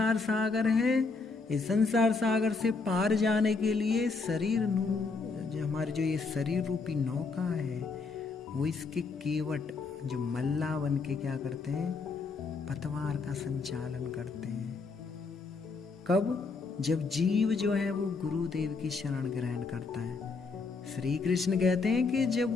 सागर है, इस संसार सागर से पार जाने के लिए जो हमारी जो ये शरीर रूपी नौका है वो इसके केवट जो मल्ला बन के क्या करते हैं, पतवार का संचालन करते हैं। कब? जब जीव जो है वो गुरुदेव की शरण ग्रहण करता है। श्री कृष्ण कहते हैं कि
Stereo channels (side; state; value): right; quieter; 4.3 dB